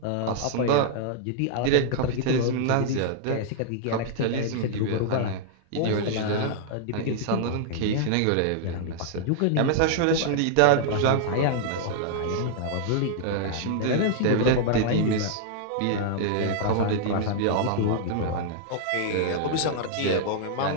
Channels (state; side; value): different; both; correlation -0.01